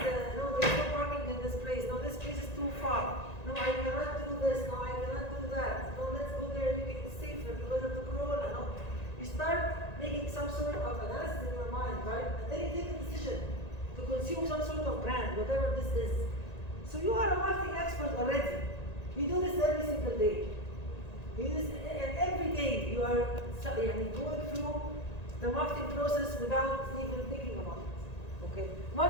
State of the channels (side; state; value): right; late; 1.9 ms